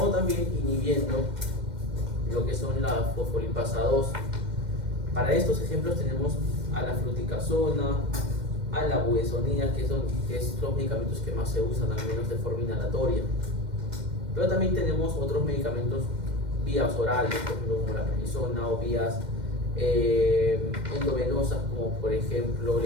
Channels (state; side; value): late; left; 2.1 ms